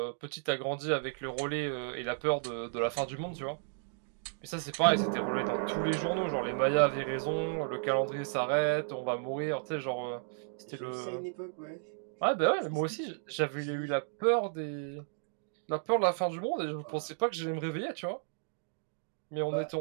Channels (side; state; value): left; silent; digital silence